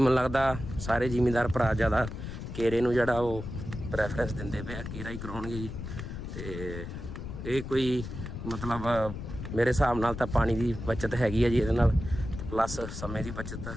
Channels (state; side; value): noise; left; rumble, 8 dB below the sound